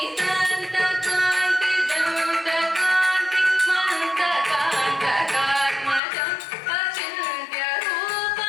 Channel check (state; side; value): drops out; right; at 6.0 s